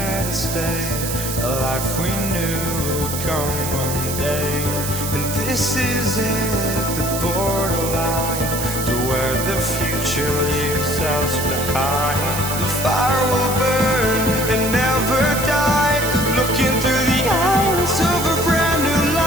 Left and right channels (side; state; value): right; noise; hiss, 5 dB below the sound